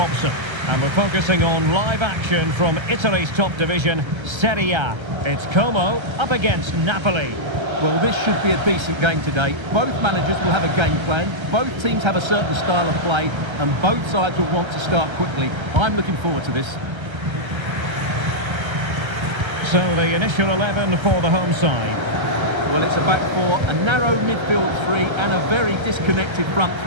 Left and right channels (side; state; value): left; late; 1.3 ms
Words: And we're focusing on live action from Italy's top division, Serie A. It's Como up against Napoli. Well, this should be a decent game today. Both managers will have a game plan, both teams have a certain style of play, and both sides will want to start quickly. I'm looking forward to this. So the initial 11 for the home side. Well, it's a back four, a narrow midfield three, and a very disconnected front